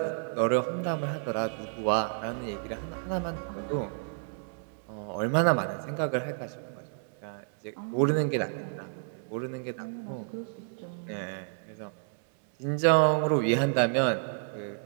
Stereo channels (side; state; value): left; silent; digital silence